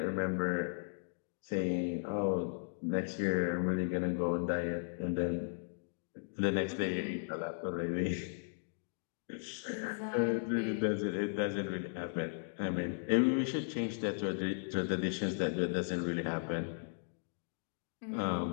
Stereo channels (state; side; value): silent; right; digital silence